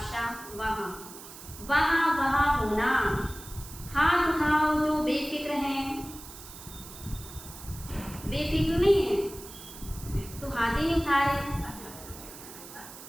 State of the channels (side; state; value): right; noise; hiss, 15 dB below the sound